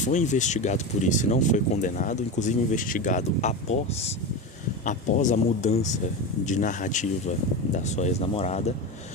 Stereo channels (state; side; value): normal; both; correlation 0.20